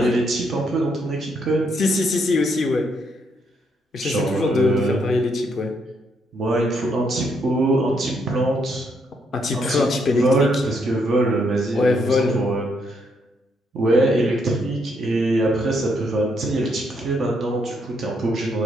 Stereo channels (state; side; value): normal; both; correlation 0.74